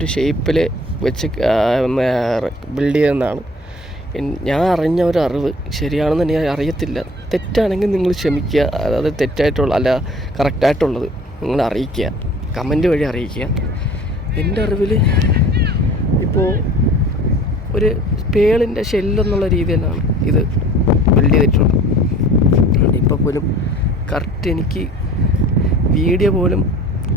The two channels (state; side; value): normal; both; correlation 0.48